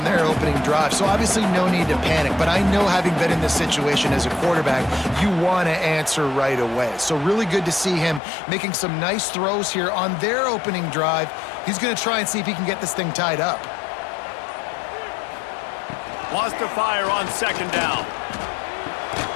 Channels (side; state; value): right; drops out; at 8.2 s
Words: their opening drive, so obviously no need to panic. But I know, having been in this situation as a quarterback, you want to answer right away. So really good to see him making some nice throws here on their opening drive. He's going to try and see if he can get this thing tied up. Wants to fire on second down.